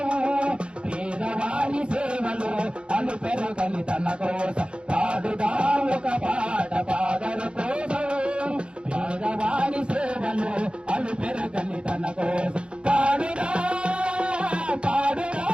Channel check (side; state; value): left; late; 0.056 ms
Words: పేదవాని సేవలు అలు పెరగని తన కోసం పాడుదా ఒక పాట పాడరు కోసం పేదవాని సేవలు అలు పెరగని తన కోసం పాడుదా పాడుదా